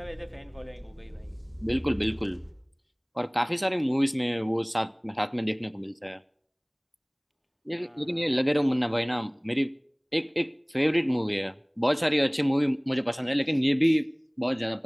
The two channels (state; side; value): identical; both; correlation 1.00